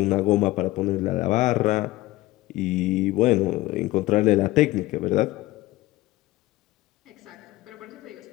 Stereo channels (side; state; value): right; quieter; 18.2 dB